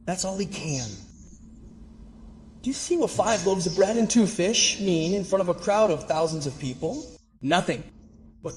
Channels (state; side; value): identical; both; correlation 1.00